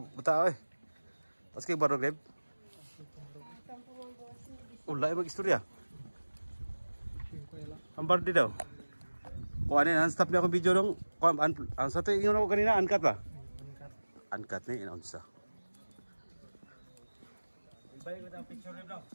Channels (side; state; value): both; inverted; correlation -1.00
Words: buta eh. Paski barog leb. Ulay mag-istorya. Ang bardi daw. Kung ano yan, stop niya akong video dong. Ang sa ito, ingon ako kanina, uncut ba? Uncut na yun, unsa. Ibay ko ng picture rin daw.